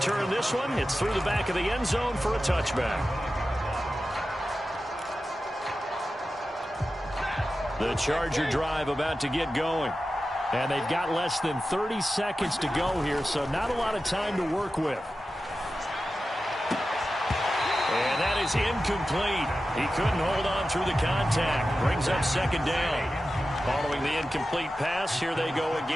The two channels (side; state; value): both; normal; correlation 0.93